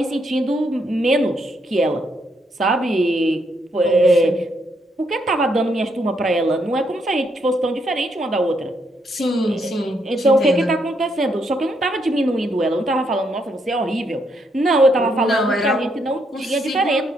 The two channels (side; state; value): both; normal; correlation 0.76